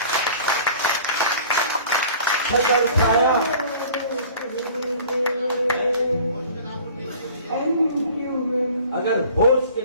چھتر چھایا اگر ہوش کے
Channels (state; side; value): inverted; both; correlation -0.46